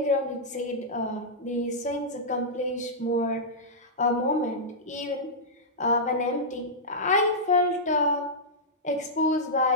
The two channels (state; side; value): normal; both; correlation -0.11